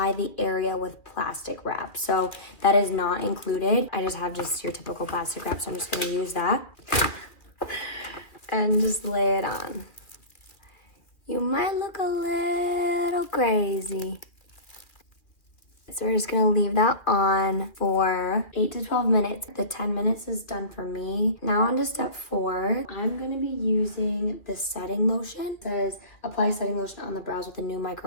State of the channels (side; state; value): right; late; 2.3 ms